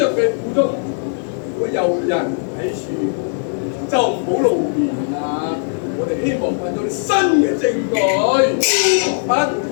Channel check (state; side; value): silent; right; digital silence